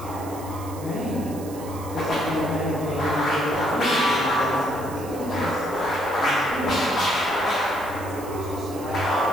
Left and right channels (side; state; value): right; noise; hiss, 17 dB below the sound